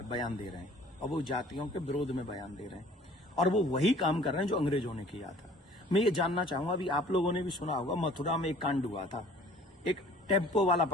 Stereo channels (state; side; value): normal; both; correlation 0.51